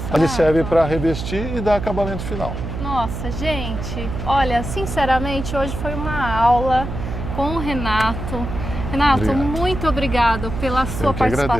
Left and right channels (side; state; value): right; noise; hum, 6 dB below the sound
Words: Ele serve Rafa. para revestir e dar acabamento final. Nossa, gente, olha, sinceramente, hoje foi uma aula com o Renato. Renato, Obrigado. muito obrigado pela sua Eu que